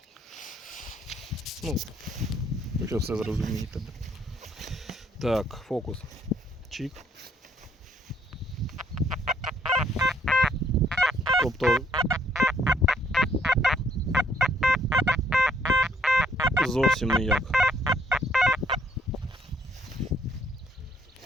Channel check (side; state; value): both; normal; correlation 0.68